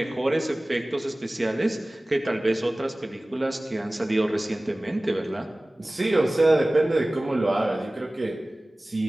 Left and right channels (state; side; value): normal; both; correlation 0.98